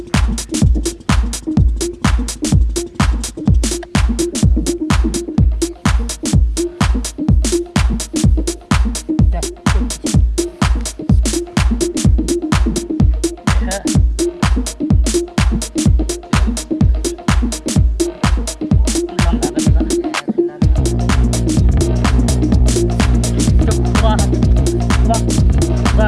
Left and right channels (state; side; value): identical; both; correlation 1.00